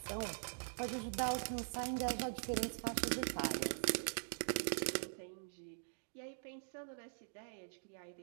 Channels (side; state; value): left; silent; digital silence